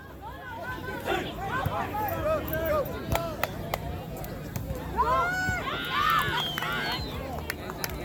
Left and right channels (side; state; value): both; identical; correlation 1.00